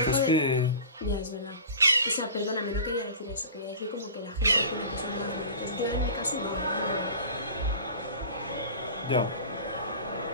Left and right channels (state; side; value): inverted; both; correlation -0.38